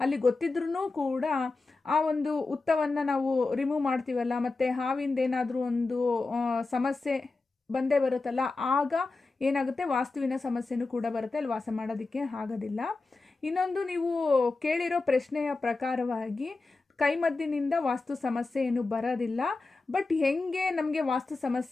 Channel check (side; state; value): right; quieter; 3.6 dB